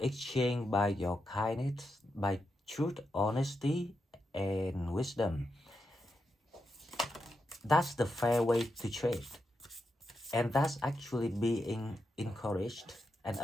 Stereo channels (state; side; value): normal; both; correlation 0.86